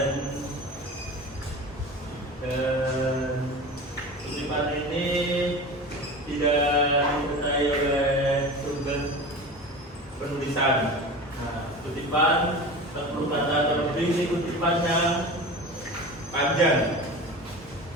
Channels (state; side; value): normal; both; correlation 0.32